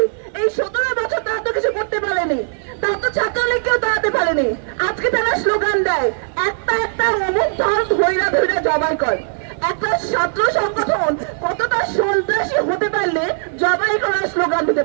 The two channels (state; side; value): silent; left; 56 dB below the other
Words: এই 17 বছর তারা তো কিছু করতে পারেনি, তারা তো ছাত্রলীগকেও দাঁড়াতে পারেনি। আজকে তারা স্লোগান দেয় একটা একটা অমুক ধর ধৈরা ধৈরা জবাই কর। একটা ছাত্র সংগঠন কতটা সন্ত্রাসী হতে পারলে জবাই করার স্লোগান দিতে